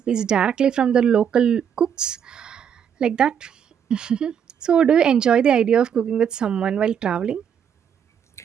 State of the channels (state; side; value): quieter; left; 8.2 dB